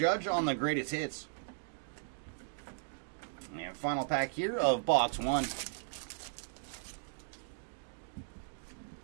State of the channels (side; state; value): left; silent; digital silence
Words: on the greatest hits. And final pack here of box 1.